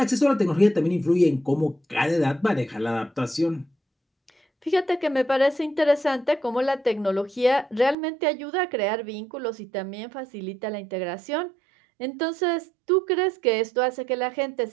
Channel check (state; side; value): drops out; left; at 8.0 s